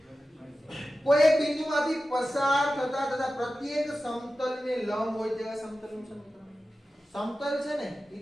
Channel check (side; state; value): both; normal; correlation 0.94